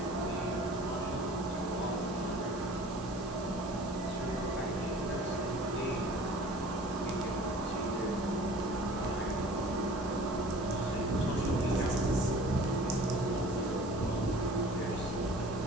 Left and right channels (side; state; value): both; normal; correlation 0.45